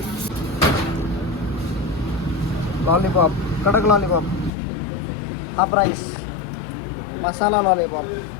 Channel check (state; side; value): drops out; right; at 4.5 s